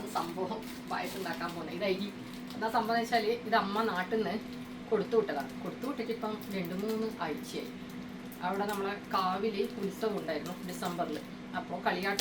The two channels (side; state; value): both; identical; correlation 1.00